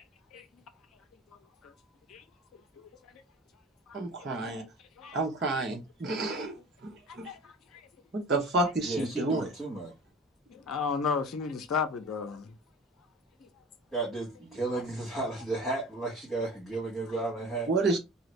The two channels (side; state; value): both; normal; correlation 0.39